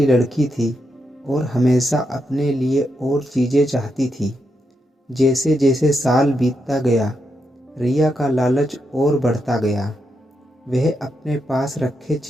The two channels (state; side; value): normal; both; correlation 0.83